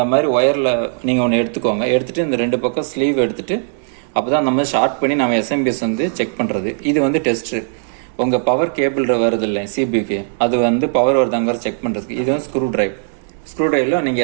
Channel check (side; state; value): left; silent; digital silence